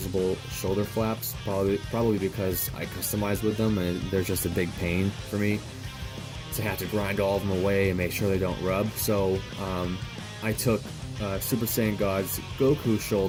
shoulder flaps, probably because I customize with them and they're just a big pain for me to have to grind all of them away and make sure they don't rub. So I took Super Saiyan God's Goku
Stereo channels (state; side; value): identical; both; correlation 1.00